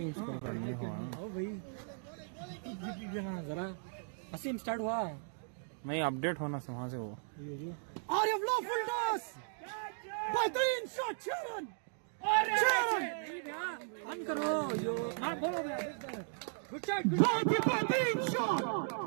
स्कोर करने हो ओ भाई जरा असीम स्टार्ट हुआ। नहीं, अपडेट होना से वहां से वो आरिफ लो फुल टॉस, बेहतरीन शॉट शेरन। ऑन करो यो हां बोलो भैया। गुड शॉट, बहुत ही बेहतरीन शॉट,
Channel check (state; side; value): silent; left; digital silence